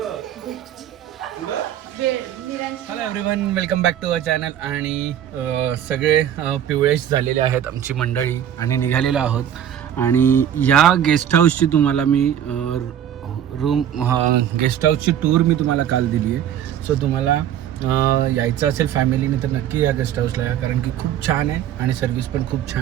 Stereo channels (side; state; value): left; quieter; 10.2 dB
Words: hello everyone, welcome back to our channel. आणि सगळे पिवळेश झालेले आहेत आमची मंडळी आणि निघालेलो आहोत. आणि या गेस्ट हाऊसची तुम्हाला मी गेस्ट हाऊसची टूर मी तुम्हाला काल दिली आहे. सो तुम्हाला यायचं असेल फॅमिलीने तर नक्की या गेस्ट हाऊसला या, कारण की खूप छान आहे आणि सर्विस पण खूप